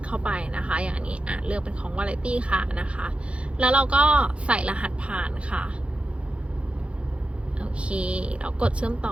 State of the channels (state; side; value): late; left; 0.060 ms